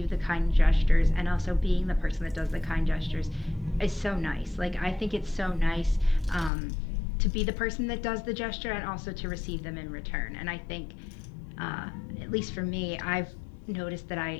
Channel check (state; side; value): drops out; right; at 6.5 s